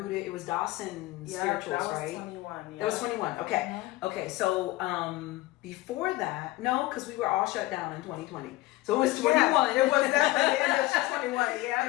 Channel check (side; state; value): right; quieter; 18.9 dB